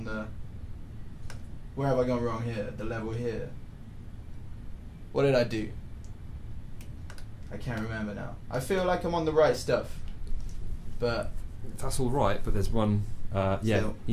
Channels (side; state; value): both; identical; correlation 1.00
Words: the, where have I gone wrong here? The level here. What did I do? I can't remember now. I feel like I'm on the right stuff, but that's all right. But there's one. Yeah, still,